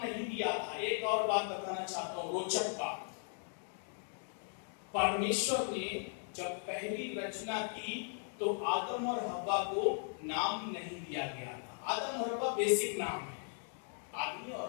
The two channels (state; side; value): silent; right; 53 dB below the other